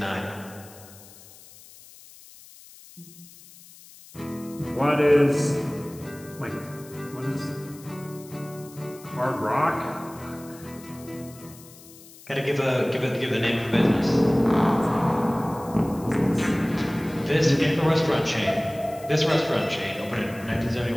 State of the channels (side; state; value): left; noise; hiss, 21 dB below the sound